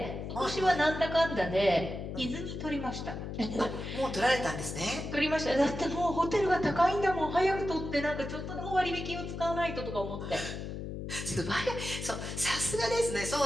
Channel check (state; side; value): noise; left; hum, 6 dB below the sound